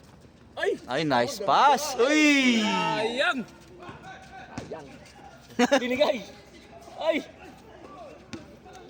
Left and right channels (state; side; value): identical; both; correlation 1.00